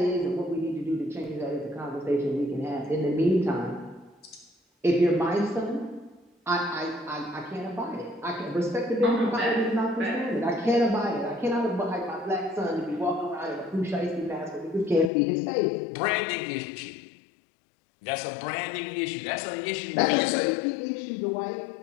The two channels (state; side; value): drops out; right; at 15.1 s